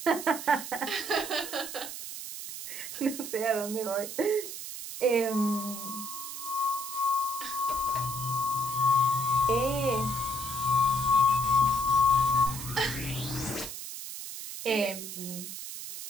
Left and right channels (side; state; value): right; noise; hiss, 8 dB below the sound